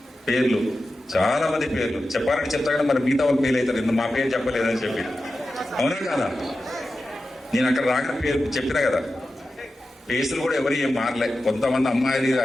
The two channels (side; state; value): both; normal; correlation 0.92